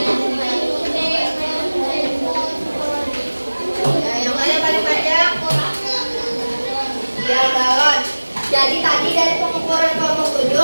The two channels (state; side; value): inverted; both; correlation -1.00